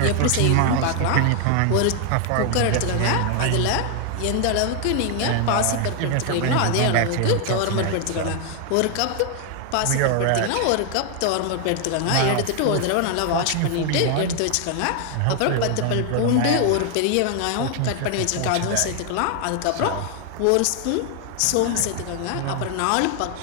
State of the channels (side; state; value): both; different; correlation 0.00